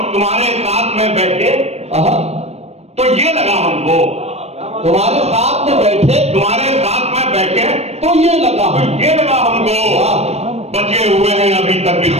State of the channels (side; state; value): left; late; 0.31 ms